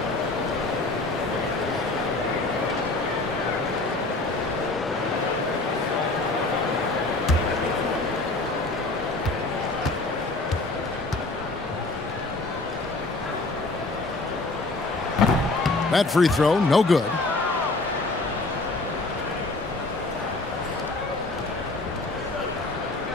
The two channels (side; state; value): right; quieter; 3.1 dB